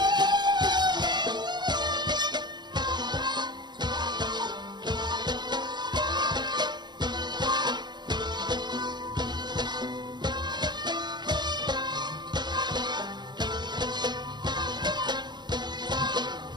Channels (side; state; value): left; late; 0.21 ms